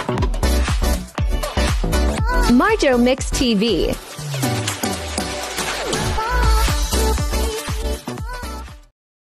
Marjo Mix TV.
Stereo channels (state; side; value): identical; both; correlation 1.00